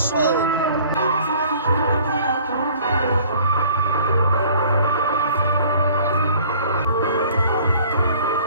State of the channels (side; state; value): both; inverted; correlation -0.52